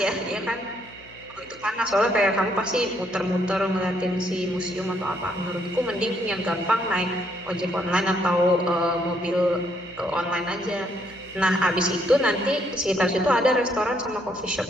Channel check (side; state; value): left; noise; hum, 23 dB below the sound